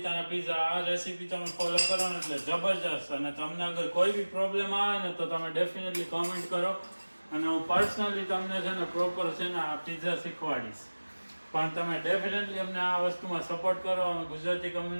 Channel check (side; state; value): both; inverted; correlation -1.00